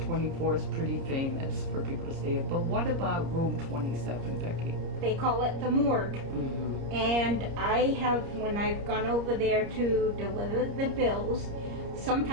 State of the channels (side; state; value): left; late; 30 ms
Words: 24 is pretty famous for people to stay in. But what about room 27, Becky? They call it the morgue. And I have, when I've gone over there to deliver the bills,